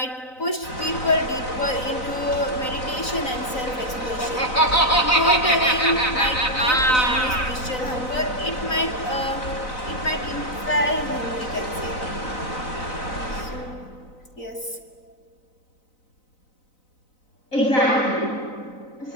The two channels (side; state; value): right; late; 4.0 ms